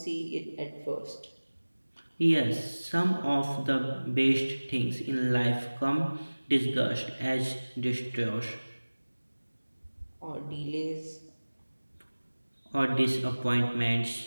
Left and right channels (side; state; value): both; inverted; correlation -1.00